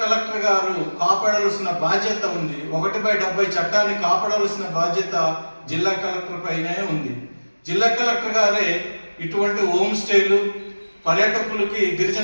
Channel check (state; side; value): inverted; both; correlation -1.00